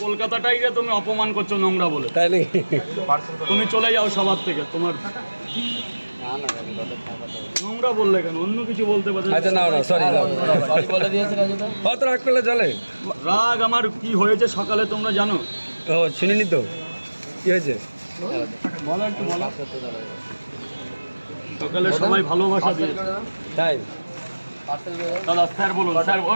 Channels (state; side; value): inverted; both; correlation -1.00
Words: কলকাতাটাই তুমি অপমান করছো নোংরা বলে, তাই নাকি? তুমি চলে যাও সবার থেকে। তোমার নোংরা বললে কেন? অন্য কিছু বলতে পারো। আচ্ছা না সরি বলে দিয়েছে রাজুদা। কত রাগ করলে চলে? রাগ আমার কি হয়েছে সকালে তোমরা জানো? ও শুনিনি তো, কি হয়েছে বলো একটু বলো। সকালে সবাই ভালোবাসা দিয়ে, তাই দাদা স্যার বলুন। স্যার